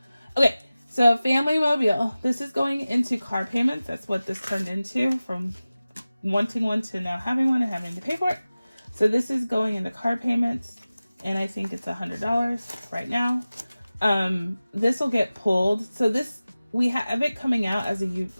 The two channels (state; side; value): inverted; both; correlation -0.97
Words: Okay, so family mobile. This is going into car payments. That's what this turned into, from wanting one to now having one and having to pay for it. So this is going into car payments, and I think it's $100 right now. This will get pulled. So this, we have it coming out as